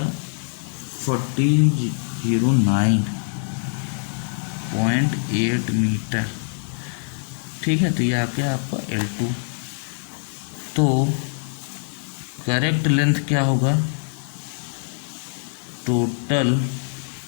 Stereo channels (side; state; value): right; silent; digital silence